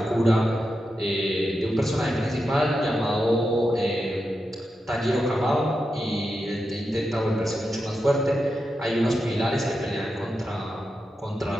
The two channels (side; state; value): both; normal; correlation 0.88